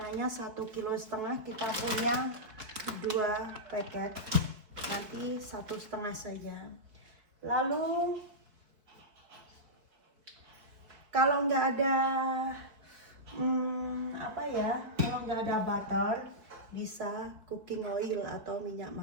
1,5 kilo kita punya 2 paket. Nanti 1,5 saja. Lalu kalau nggak ada kalau nggak ada butter, bisa cooking oil atau minyak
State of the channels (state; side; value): late; left; 4.6 ms